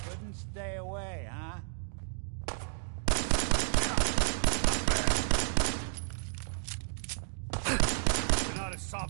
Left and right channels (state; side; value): silent; left; digital silence